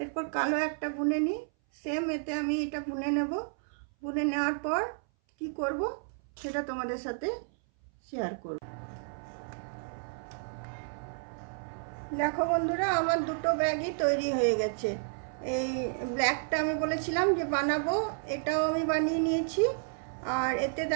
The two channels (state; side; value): silent; left; 57 dB below the other